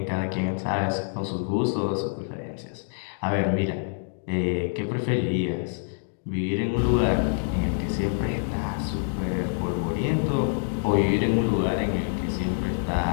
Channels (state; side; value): silent; right; digital silence